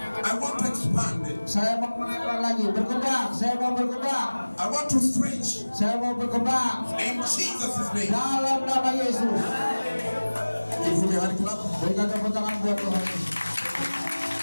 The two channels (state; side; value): inverted; both; correlation -1.00